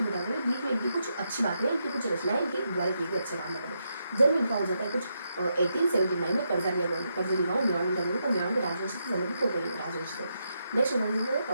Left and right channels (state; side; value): inverted; both; correlation -0.82